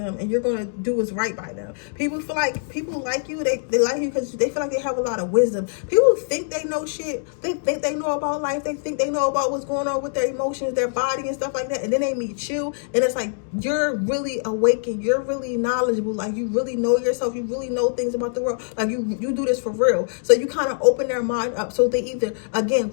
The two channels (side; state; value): right; silent; digital silence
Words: and you're going to do what's right by them. People feel like people like you. They like you because they feel like they have a lot of wisdom. People think they know shit. They think they know about life. They think they know about what's going on with their emotions, their body and stuff like that. And then they meet you and it's like, you're really awakened. You're really knowledgeable. Like, you really know yourself. You really know things about the world. Like, you do this for real. So you kind of open their mind up, so they either again